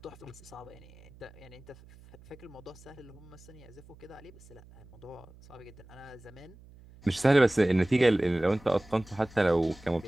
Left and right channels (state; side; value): noise; right; hum, 22 dB below the sound